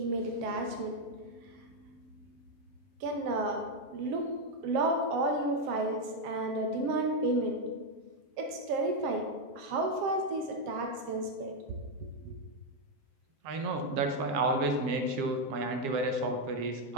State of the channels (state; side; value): late; left; 7.5 ms